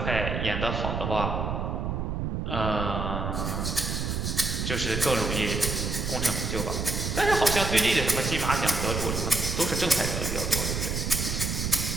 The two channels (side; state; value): right; noise; rumble, 2 dB below the sound